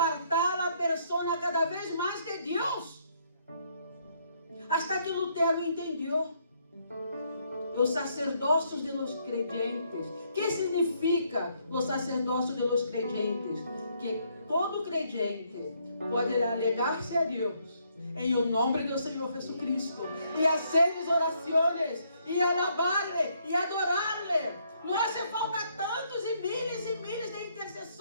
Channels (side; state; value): both; inverted; correlation -0.71